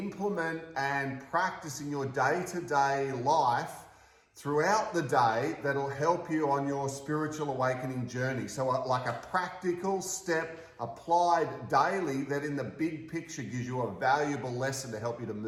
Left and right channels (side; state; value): both; identical; correlation 1.00